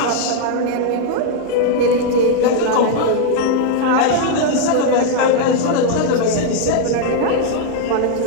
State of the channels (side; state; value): both; different; correlation 0.00